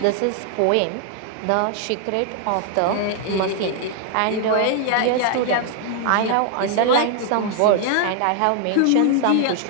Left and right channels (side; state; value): both; different; correlation 0.00